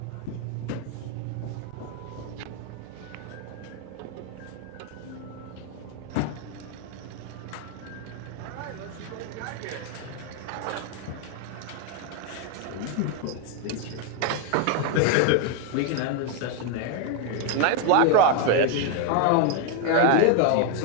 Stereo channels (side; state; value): both; different; correlation 0.01